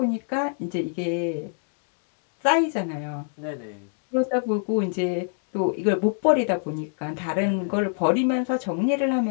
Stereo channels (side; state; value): right; silent; digital silence